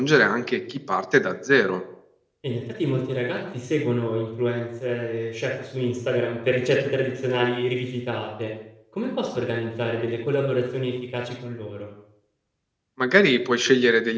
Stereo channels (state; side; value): identical; both; correlation 1.00